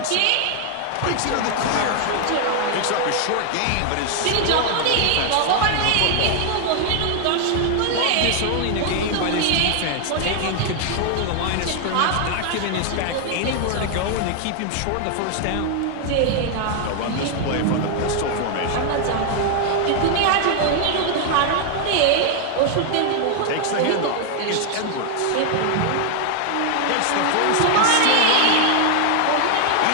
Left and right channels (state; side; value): different; both; correlation 0.00